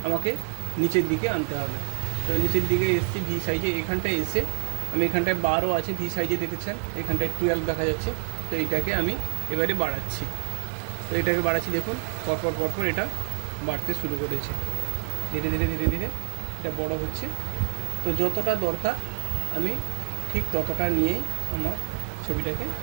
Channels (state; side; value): silent; left; 57 dB below the other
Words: আমাকে নিচের দিকে আনতে হবে। তো নিচের দিকে এসছি ভি সাইজে, এখানটায় এসে আমি এখানটায় 12 আছে ভি সাইজে দেখেছেন, এখানটায় 12 দেখা যাচ্ছে। তো এটাকে আমি এবারে বাড়াচ্ছি। তো এটাকে বাড়াচ্ছি, দেখুন পরপর এটা বাড়তে শুরু করেছে, ধীরে ধীরে ধীরে ধীরে এটা বড় হচ্ছে। তো যতটা দরকার আমি ঠিক ততটা নিয়েই আমার ছবিটাকে